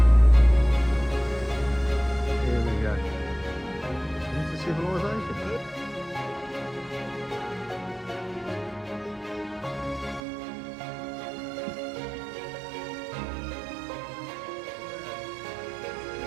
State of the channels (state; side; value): drops out; left; at 10.2 s